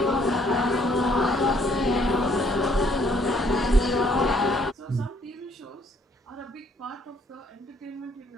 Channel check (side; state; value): both; normal; correlation 0.65